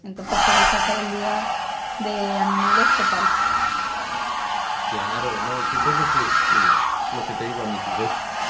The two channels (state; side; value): identical; both; correlation 1.00